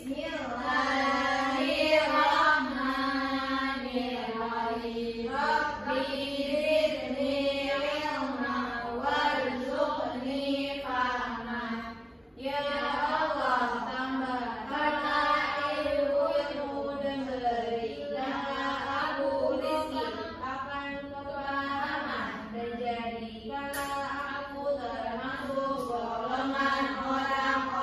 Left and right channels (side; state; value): both; identical; correlation 1.00